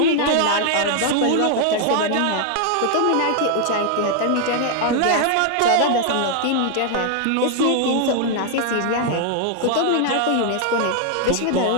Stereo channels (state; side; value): different; both; correlation 0.00